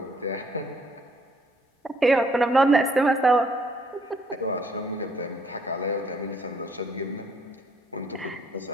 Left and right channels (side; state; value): both; normal; correlation 0.66